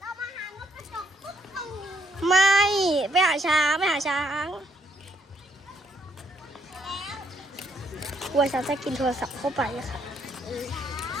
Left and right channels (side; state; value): both; normal; correlation 0.72